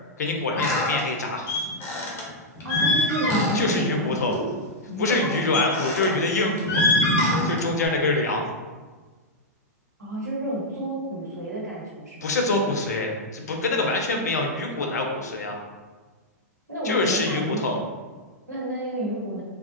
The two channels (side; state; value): both; normal; correlation -0.05